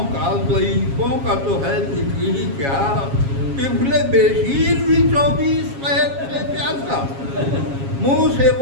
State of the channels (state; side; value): late; left; 7.3 ms